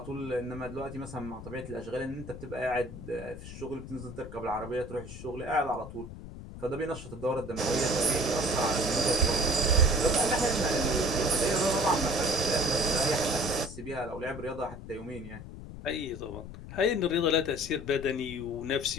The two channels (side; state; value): left; noise; rumble, 12 dB below the sound